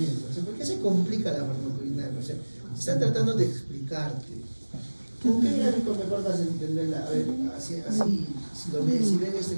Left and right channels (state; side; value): inverted; both; correlation -1.00